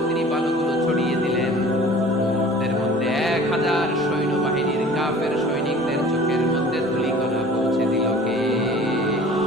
তিনি বালুগুলো ছড়িয়ে দিলেন। এর মধ্যে 1000 সৈন্যবাহিনীর কাফের সৈনিকদের চোখের মধ্যে ধূলিকণা পৌঁছে দিল কে?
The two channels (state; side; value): normal; both; correlation 0.46